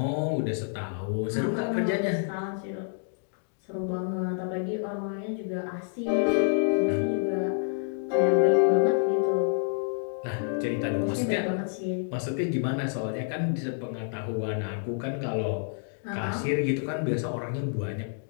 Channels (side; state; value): right; silent; digital silence